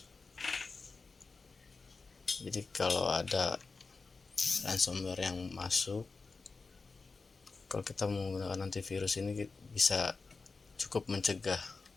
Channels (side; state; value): right; quieter; 4.2 dB